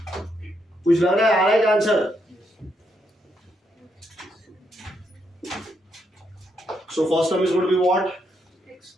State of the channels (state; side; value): normal; both; correlation 0.78